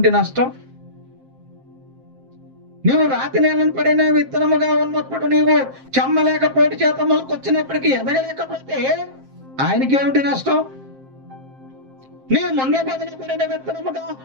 నష్టం? నువ్వు రాతి నేలను పడిన విత్తనముగా ఉన్నప్పుడు నీవు చెమ్మలేక పోటీ చేత మొలకొచ్చినప్పటికీ ఎదగలేకపోతే ఆయనకి ఏమిటి నష్టం? నీవు ముంగ బదిలి పడిన విత్తనముగా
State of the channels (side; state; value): left; late; 7.6 ms